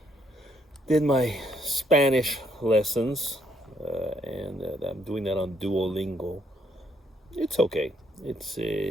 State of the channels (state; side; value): normal; both; correlation 0.71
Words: did my Spanish lessons, and I'm doing that on Duolingo. It's okay.